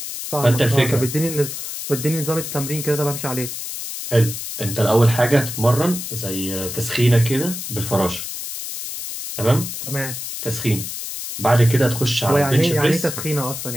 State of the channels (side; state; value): left; noise; hiss, 7 dB below the sound